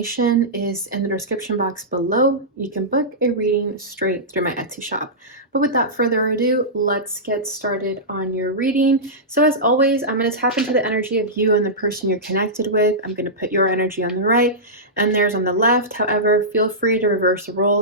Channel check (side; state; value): both; normal; correlation -0.15